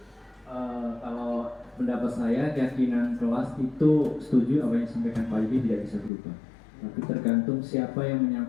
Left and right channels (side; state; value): right; drops out; at 6.1 s